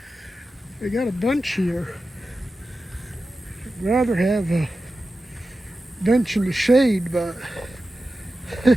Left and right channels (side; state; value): both; normal; correlation 0.93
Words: They got a bench here. I'd rather have a bench in the shade, but